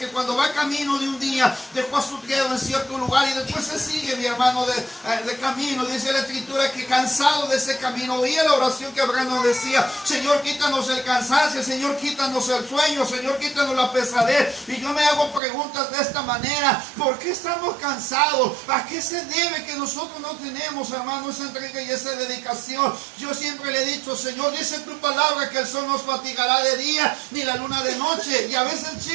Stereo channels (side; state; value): left; drops out; at 15.4 s